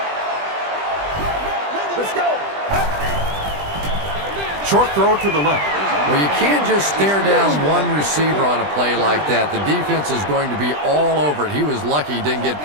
Short throw to the left. Well, you can't just stare down one receiver on a play like that. The defense is going to be all over it. He was lucky he didn't get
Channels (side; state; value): left; late; 20 ms